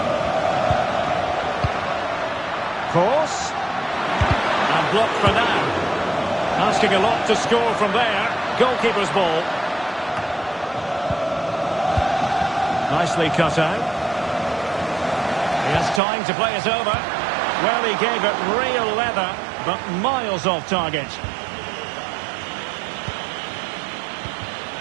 Cross. And blocked for now. Asking a lot to score from there. Goalkeeper's ball. Nicely cut out. He has time to play it over. Well, he gave it real leather, but miles off target.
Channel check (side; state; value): left; drops out; at 16.0 s